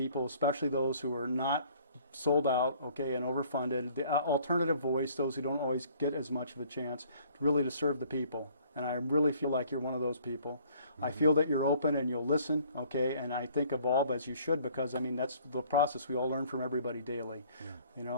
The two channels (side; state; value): both; inverted; correlation -0.57